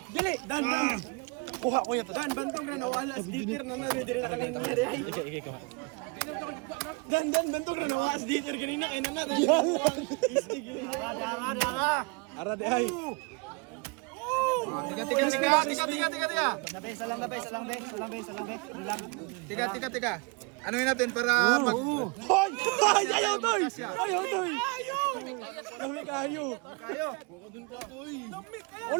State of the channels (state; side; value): quieter; left; 30.0 dB